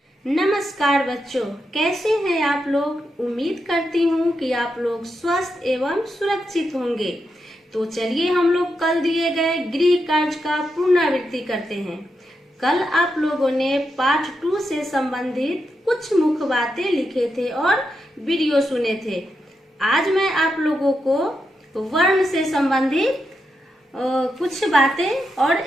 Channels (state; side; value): normal; both; correlation 0.85